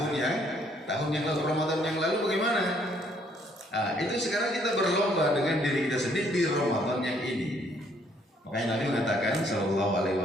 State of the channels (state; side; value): normal; both; correlation 0.66